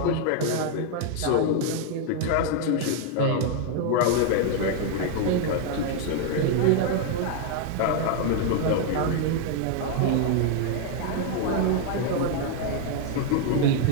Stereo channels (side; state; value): both; different; correlation 0.00